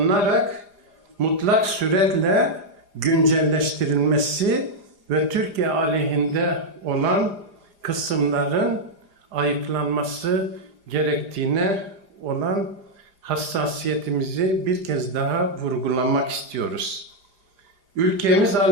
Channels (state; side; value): late; left; 4.9 ms